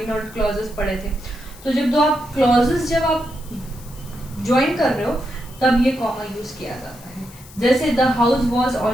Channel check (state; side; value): noise; left; hiss, 21 dB below the sound